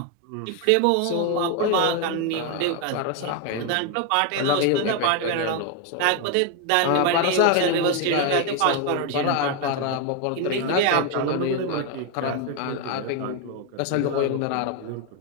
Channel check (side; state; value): both; different; correlation 0.01